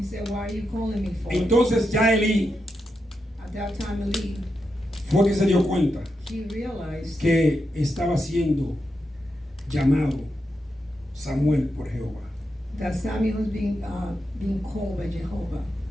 said, "Why are you calling me for?" Entonces ya Elí At that time, Eli, fue que se dio cuenta he realized que estaba siendo llamado Samuel por Jehová. that Samuel was being called by Jehovah.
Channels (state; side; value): normal; both; correlation 0.86